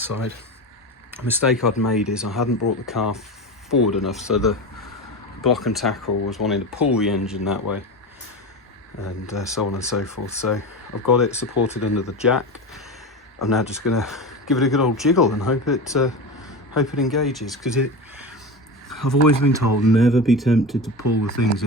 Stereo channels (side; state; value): both; normal; correlation 0.24